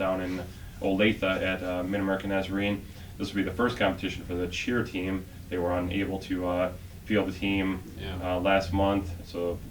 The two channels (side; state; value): both; identical; correlation 1.00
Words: in Olathe at Mid-American Nazarene. This will be the first competition for the cheer team. They were unable to field the team last month. So